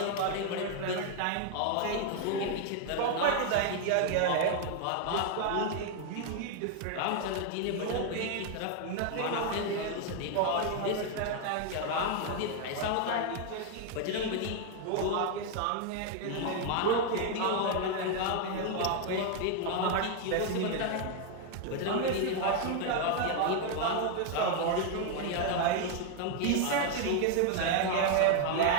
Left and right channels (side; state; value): both; different; correlation 0.00